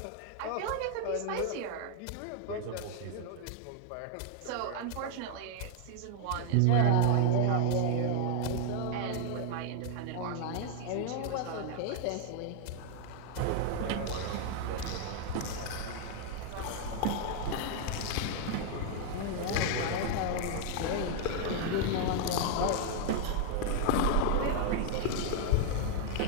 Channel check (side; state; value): both; different; correlation 0.00